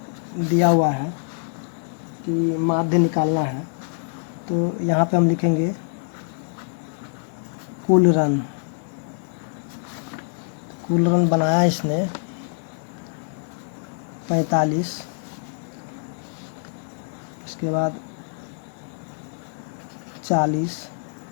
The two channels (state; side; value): silent; right; digital silence